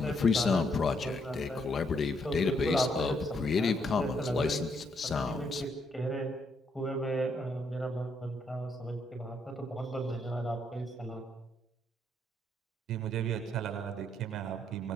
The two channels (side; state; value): both; normal; correlation 0.73